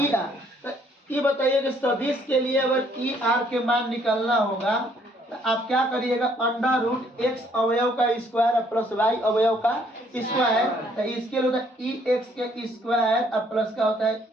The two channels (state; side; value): normal; both; correlation 0.65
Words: आर। तो ये बताइए कि सदिश के लिए अगर ई आर के मान निकालना होगा तो आप क्या करिएगा, अंडर रूट एक्स अवयव का स्क्वायर प्लस वाई अवयव का स्क्वायर, तो इसके लिए होता है ई एक्स के स्क्वायर और प्लस का होता है